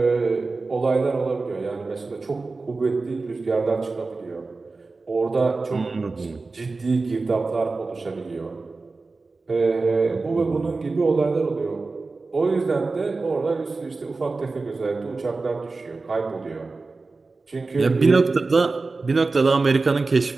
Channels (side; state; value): left; quieter; 3.8 dB